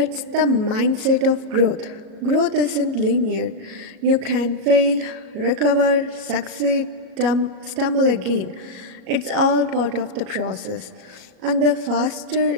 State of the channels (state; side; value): late; left; 38 ms